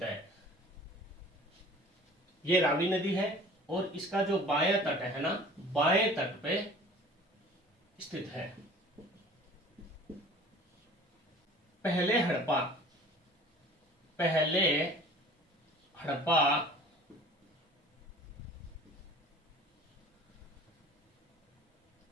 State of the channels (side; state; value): both; normal; correlation 0.46